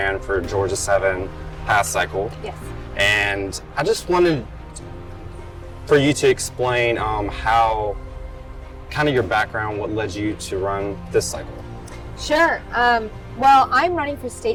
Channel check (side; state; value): both; identical; correlation 1.00